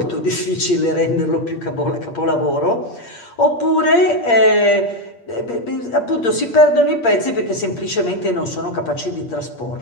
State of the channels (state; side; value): late; right; 8.5 ms